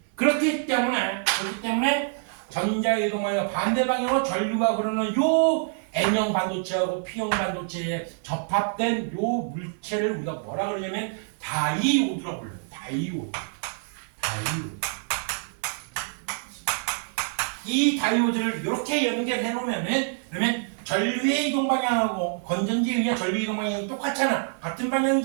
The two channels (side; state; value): left; silent; 58 dB below the other